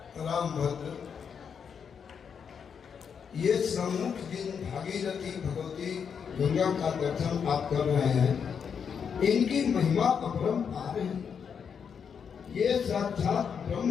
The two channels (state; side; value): quieter; right; 6.9 dB